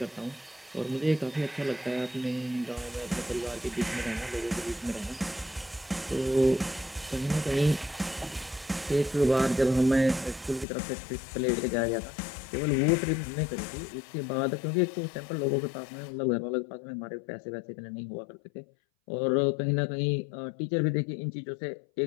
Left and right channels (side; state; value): right; drops out; at 10.7 s